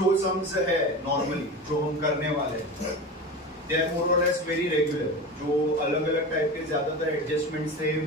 सम्स है नॉर्मली जो हम करने वाले हैं दे आर मोर और लेस वेरी रेगुलर। जो अलग अलग टाइप के ज्यादातर एडजस्टमेंट्स थे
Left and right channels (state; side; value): normal; both; correlation 0.28